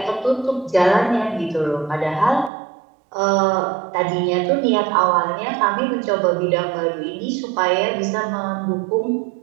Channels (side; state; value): left; drops out; at 2.5 s